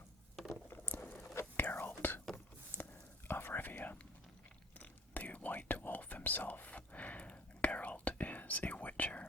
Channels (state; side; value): normal; both; correlation 0.52